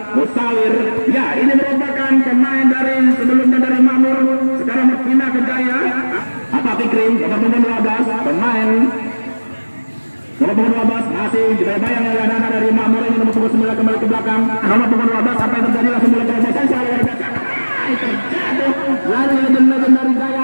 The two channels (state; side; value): inverted; both; correlation -1.00